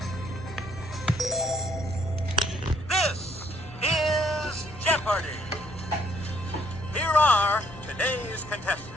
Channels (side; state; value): both; normal; correlation 0.66